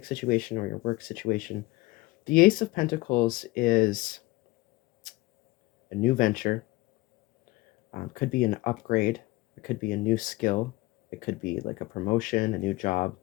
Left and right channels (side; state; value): right; quieter; 20.5 dB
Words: situation or your work situation. The Ace of Pentacles is a new venture. Could be an upgrade. It could be a new skill. It could be like a promotion, a new job,